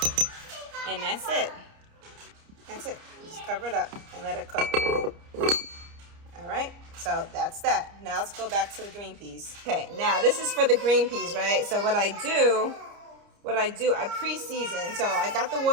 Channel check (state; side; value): late; left; 29 ms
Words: And that's it. That's it. Just cover it up and let it cook. All right, so that's that. Now let's go back to the green peas. Okay, now this is for the green peas, right? So what I do, I pre-season. So I got the